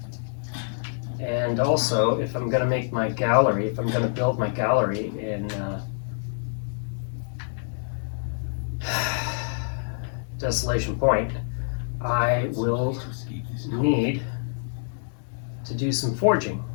And also, if I'm going to make my gallery, if I'm going to build my gallery in Desolation Point, I will need to do some forging.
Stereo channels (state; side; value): silent; right; digital silence